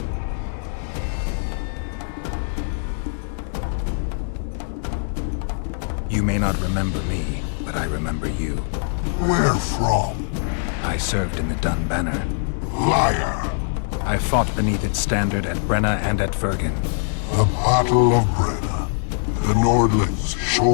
You may not remember me, but I remember you. Where from? I served in the Dun Banner. Liar! I fought beneath its standard at Brenna and at Vergen. The Battle of Brenna. The Nordlings,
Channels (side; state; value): right; silent; 64 dB below the other